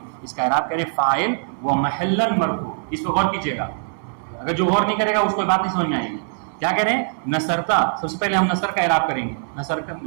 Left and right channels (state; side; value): silent; left; digital silence